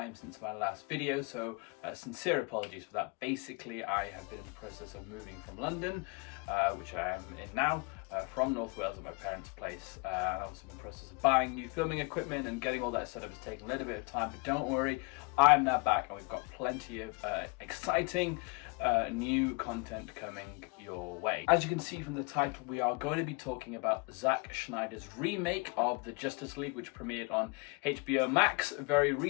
since my last video, so sincere apologies for that. Basically, I have been in the process of moving from London, which I am in now, from North Wales at my parents' place. And I've also been in the process of buying new filming equipment and getting all that set up. It's taken a little bit of time, but don't worry, I am now back and we've got plenty of exciting new content coming your way. As you can see from the title, we are going to be talking about Zack Snyder's remake of the Justice League, which premiered on HBO Max very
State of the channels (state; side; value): quieter; right; 30.5 dB